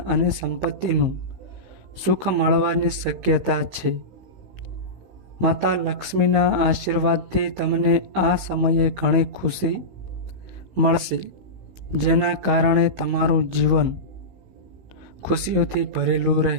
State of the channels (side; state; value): left; late; 15 ms